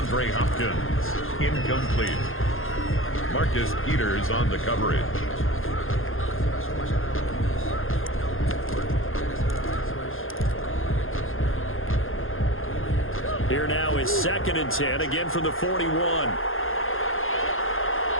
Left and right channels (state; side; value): late; right; 0.60 ms